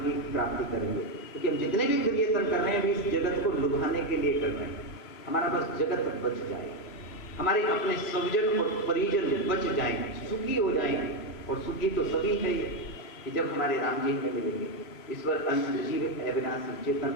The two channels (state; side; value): late; right; 3.0 ms